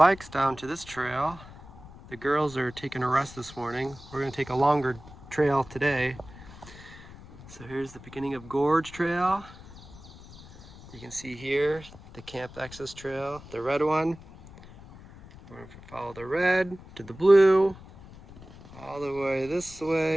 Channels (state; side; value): noise; left; rumble, 18 dB below the sound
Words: down to this trail. The girls are taking a rest this morning. We're going to take a longer trail today. So here's the beginning of Gorge Trail. You can see here the Camp Access Trail, the red one. We're going to follow the red to the blue, all the way this